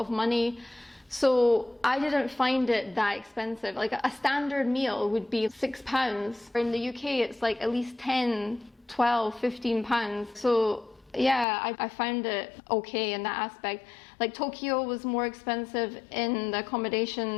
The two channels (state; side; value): drops out; right; at 11.5 s